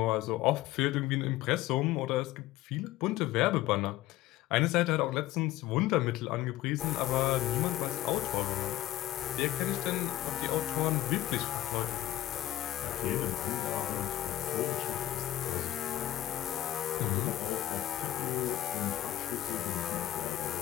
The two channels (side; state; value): right; quieter; 14.6 dB